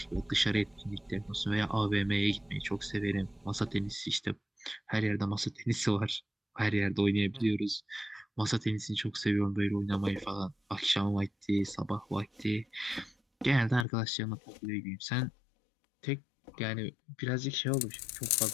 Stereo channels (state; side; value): drops out; right; at 13.9 s